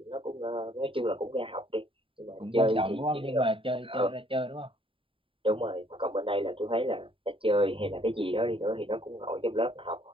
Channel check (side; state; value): left; late; 0.25 ms